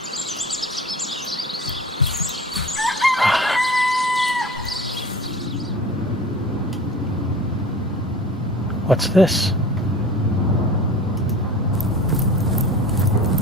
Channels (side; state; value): both; normal; correlation 0.39